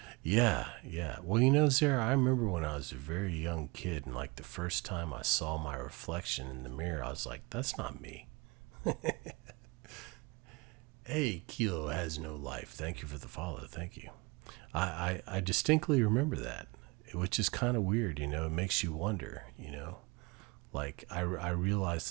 yeah. Well, you know, Sarah, I remember when I was a very young kid, and like the first time I saw my reflection in the mirror, I was like, that's not me. Hey, Kilo has no life. Thank you for the follow. Thank you. I distinctly remember that, which is kind of weird, you know. It makes you wonder, you know. Like, I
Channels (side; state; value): left; quieter; 26.6 dB